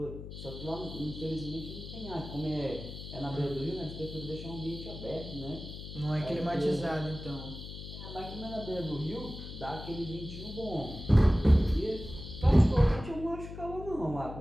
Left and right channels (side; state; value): left; noise; hum, 10 dB below the sound